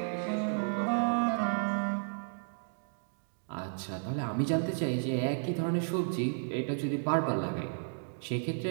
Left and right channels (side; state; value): left; silent; digital silence